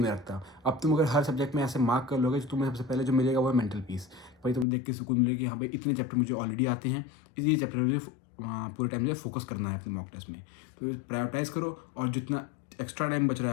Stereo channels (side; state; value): right; drops out; at 4.7 s